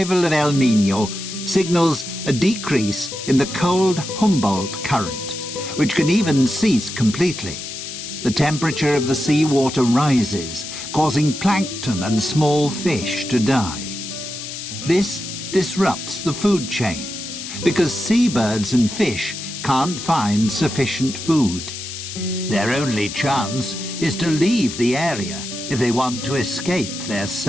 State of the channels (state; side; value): noise; left; hiss, 9 dB below the sound